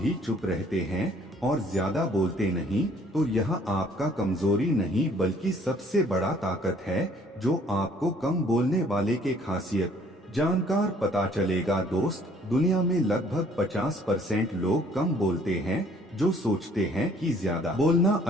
भी चुप रहते हैं और ज्यादा बोलते नहीं तो यह आपका कमजोरी नहीं बल्कि सबसे बड़ा ताकत है जो आपको कम बोलने वाले के खासियत जानकार पता चलेगा। दोस्त, दुनिया में लगभग 50% लोग कम बोलते हैं, जो सोचते हैं कि ज्यादा बोलना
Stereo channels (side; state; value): both; normal; correlation 0.59